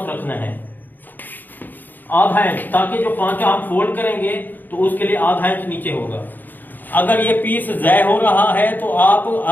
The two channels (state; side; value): late; right; 0.087 ms